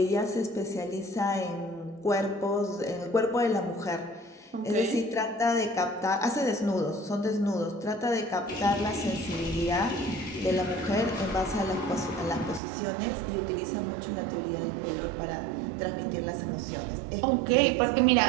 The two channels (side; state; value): left; drops out; at 12.6 s